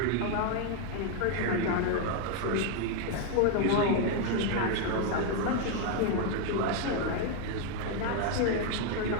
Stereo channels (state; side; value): different; both; correlation 0.01